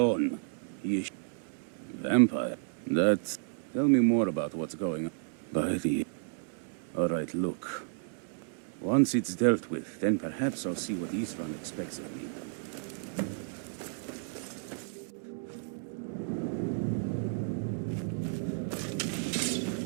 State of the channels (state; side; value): silent; left; digital silence